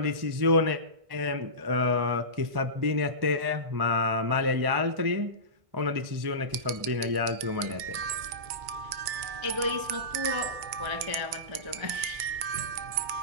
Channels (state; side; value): late; left; 2.2 ms